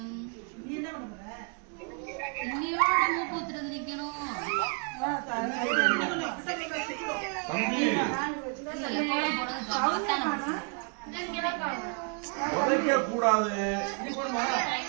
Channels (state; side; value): quieter; left; 39.0 dB